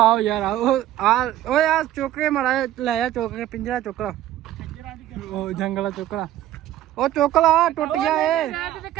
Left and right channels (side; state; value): left; quieter; 13.2 dB